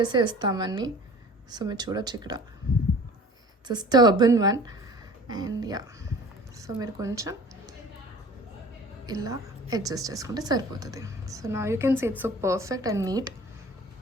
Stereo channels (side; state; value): both; normal; correlation 0.45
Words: ఇస్తామని. సో మీరు చూడొచ్చు ఇక్కడ just urban one. And yeah, so మీరు కొంచెం ఇలా అడ్జస్ట్ చేసుకుంటే సరిపోతుంది. సో నా you can see it's so perfect and neat.